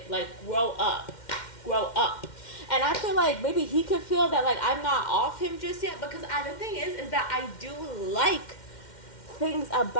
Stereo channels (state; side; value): late; right; 2.1 ms